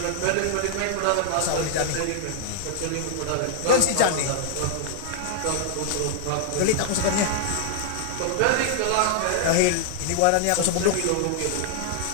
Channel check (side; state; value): both; different; correlation -0.01